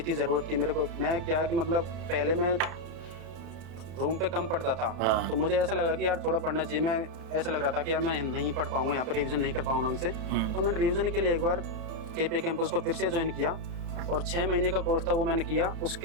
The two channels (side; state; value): left; late; 32 ms